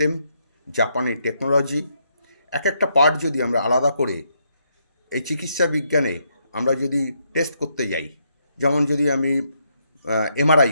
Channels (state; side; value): inverted; both; correlation -0.77